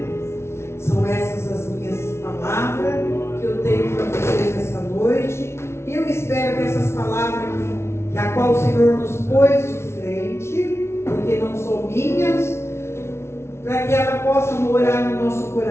São essas as minhas palavras que eu tenho para vocês essa noite. E eu espero que essas palavras que a qual o Senhor nos pôs de frente, porque não são minhas, para que ela possa morar no nosso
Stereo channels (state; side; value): late; right; 0.13 ms